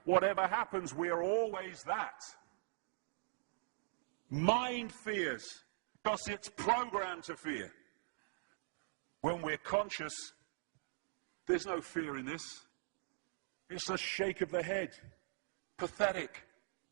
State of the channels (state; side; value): silent; left; digital silence